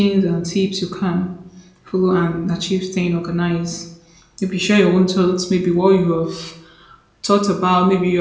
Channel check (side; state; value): both; identical; correlation 1.00